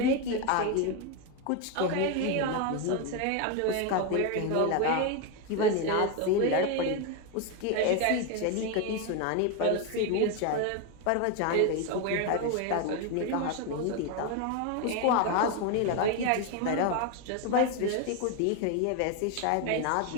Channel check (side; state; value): both; different; correlation 0.02